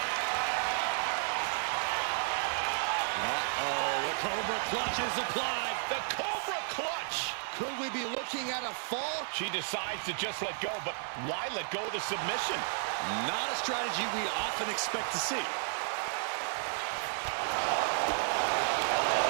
The Cobra clutch is applied. The Cobra clutch. Could we be looking at a fall? She decides to just let go, but why let go of the submission? Not a strategy we often expect to see.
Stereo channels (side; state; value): left; silent; digital silence